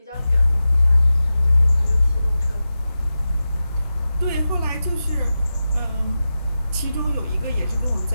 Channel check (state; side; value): inverted; both; correlation -0.93